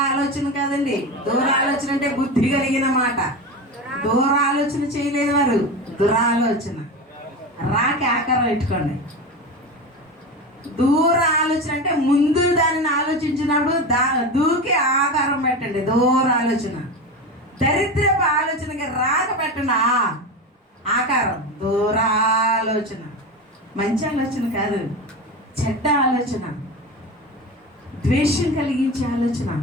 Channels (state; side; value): normal; both; correlation 0.24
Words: ఆలోచన కాదండి. దూర ఆలోచన అంటే బుద్ధి కలిగిన మాట. దూర ఆలోచన చేయలేదు వారు, దురాలోచన. రాకి ఆకారం పెట్టుకోండి. దూర ఆలోచన అంటే ముందు దానిని ఆలోచించినప్పుడు దూకి ఆకారం పెట్టండి. దూర ఆలోచన. దరిద్రపు ఆలోచనకి రాక పెట్టండి ఆకారం. దూరాలోచన మంచి ఆలోచన కాదు, చెడ్డ ఆలోచన, ద్వేషం కలిగించే ఆలోచన,